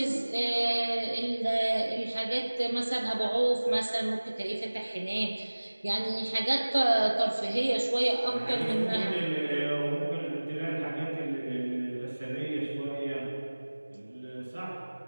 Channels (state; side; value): inverted; both; correlation -1.00